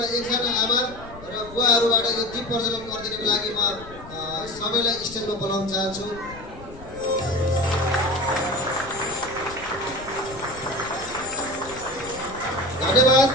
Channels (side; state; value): left; noise; rumble, 17 dB below the sound